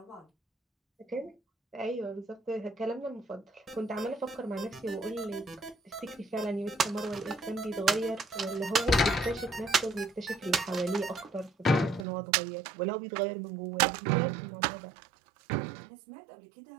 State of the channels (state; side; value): drops out; left; at 12.1 s